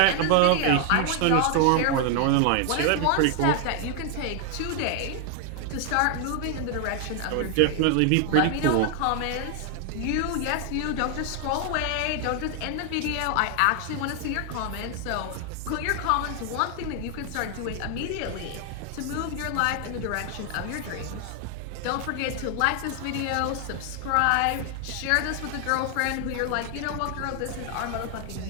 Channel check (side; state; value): both; different; correlation 0.00